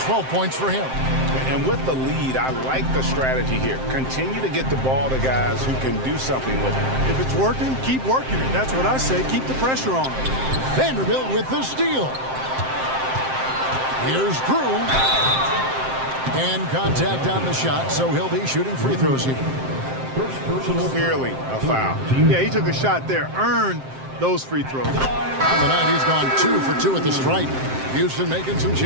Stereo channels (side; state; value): left; late; 7.6 ms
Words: 12 points for him. And with the lead, I like the strategy here. Continue to get the ball to guys who can do something with it. If it's working, keep working it. That's what I say. Keep the pressure on. Vanderbilt with the steal. Here's Drew. And contact on the shot, so he'll be shooting free throws here. Clearly a foul. Yeah, he took a shot there. Earned those free throws. On the night, he's gone 2 for 2 at the stripe. Houston making some